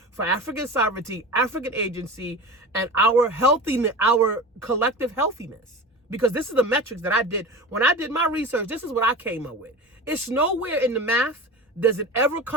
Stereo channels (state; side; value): normal; both; correlation 0.31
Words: for African sovereignty, African agency, and our healthiness, our collective healthiness. Because this is the metrics that I did. When I did my research, this is what I came up with. It's nowhere in the math does it ever